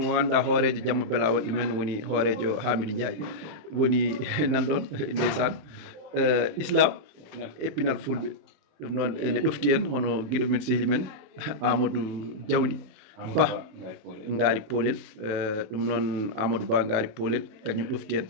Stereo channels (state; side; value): late; left; 28 ms